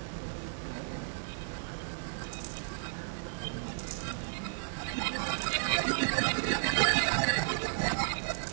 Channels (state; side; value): silent; left; digital silence